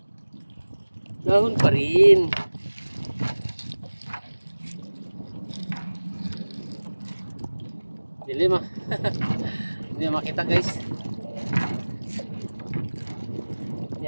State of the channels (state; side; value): inverted; both; correlation -1.00